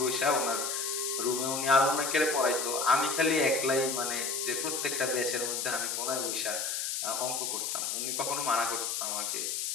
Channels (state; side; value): noise; left; hiss, 1 dB below the sound